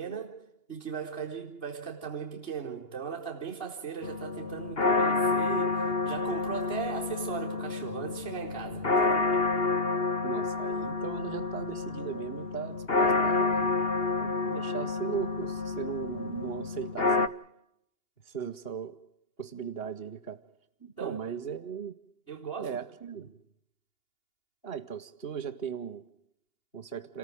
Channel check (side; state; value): right; late; 2.8 ms